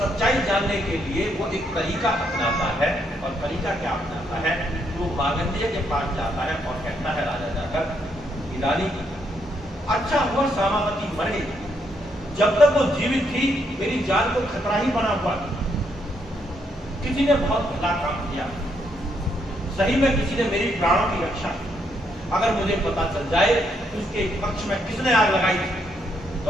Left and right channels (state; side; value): normal; both; correlation 0.75